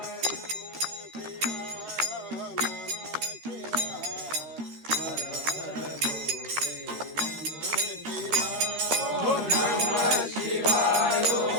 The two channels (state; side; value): late; left; 13 ms